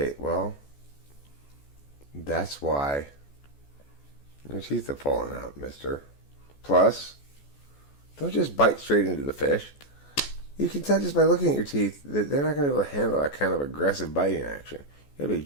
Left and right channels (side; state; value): right; late; 14 ms